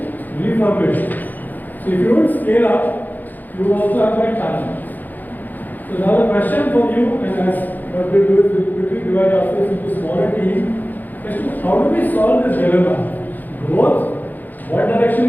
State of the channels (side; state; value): right; late; 0.084 ms